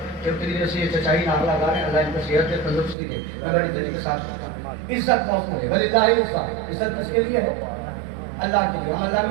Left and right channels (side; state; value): left; drops out; at 3.0 s